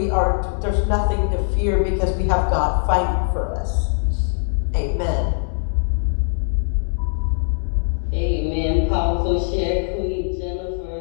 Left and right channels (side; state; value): right; silent; digital silence